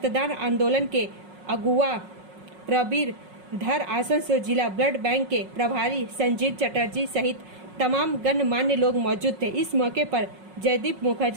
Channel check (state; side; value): late; left; 5.4 ms